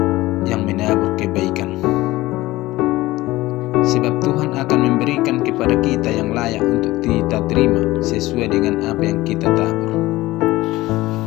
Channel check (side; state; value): right; quieter; 18.3 dB